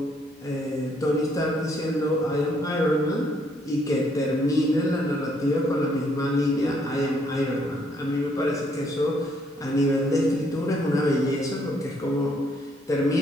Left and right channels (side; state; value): both; normal; correlation 0.69